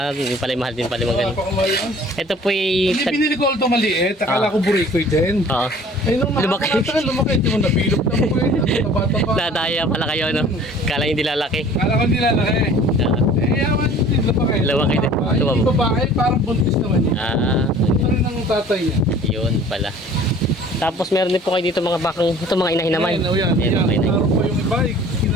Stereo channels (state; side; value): normal; both; correlation 0.49